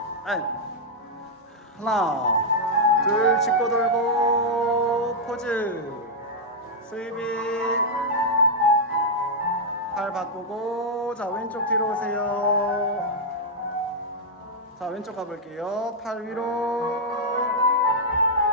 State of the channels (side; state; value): both; normal; correlation -0.05